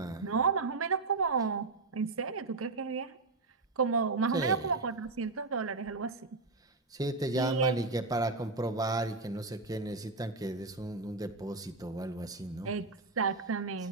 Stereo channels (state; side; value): quieter; left; 3.7 dB